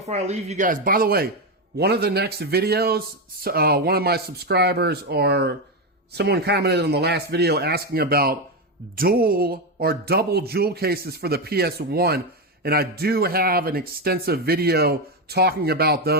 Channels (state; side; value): normal; both; correlation 0.10